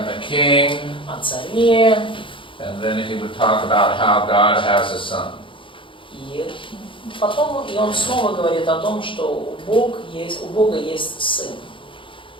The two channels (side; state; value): right; late; 0.25 ms